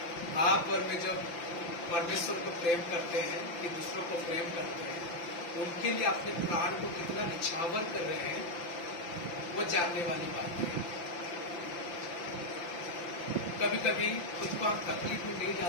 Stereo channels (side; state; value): right; late; 5.9 ms